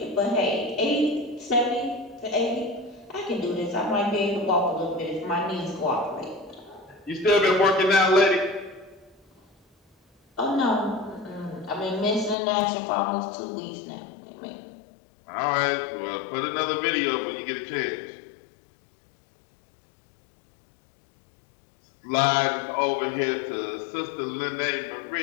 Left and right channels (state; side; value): drops out; right; at 12.4 s